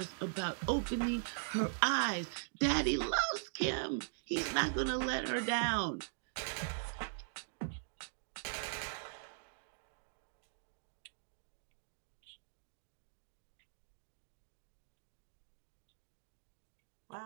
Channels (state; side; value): silent; left; digital silence